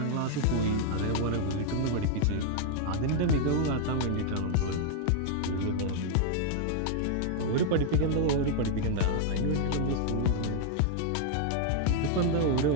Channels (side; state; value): both; different; correlation 0.00